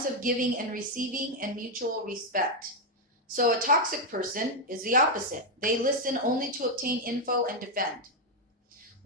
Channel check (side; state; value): both; normal; correlation 0.01